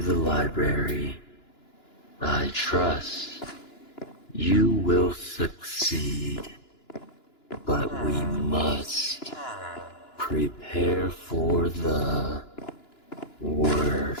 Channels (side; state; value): right; late; 2.9 ms